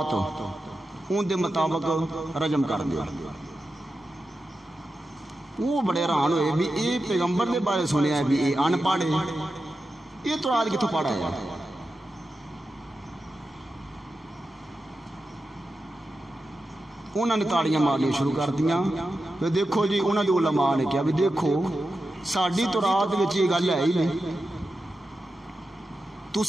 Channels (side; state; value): both; normal; correlation 0.91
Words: ان دے مطابق رجم کر دیا۔ وہ بڑے حیران ہوئے بھی اے پیغمبر دے بارے سنیا ہے بھی اے ان پڑھے، یہ تورات کتوں پڑھا ہے؟ انہوں نے تاڑیاں مارنی شروع کر دیا۔ دیکھو جی انہوں نے علماء نے کہا بھی دیکھو ساڑی تورات وچ یہ گل ہے ہی نہیں،